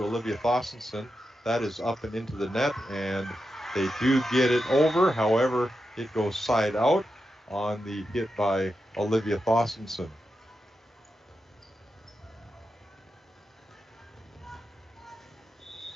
Olivia Thossenson. That is up and into the net, and they do get it over. However, It goes side out on the hit by Olivia Thorstensen.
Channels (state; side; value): normal; both; correlation 0.88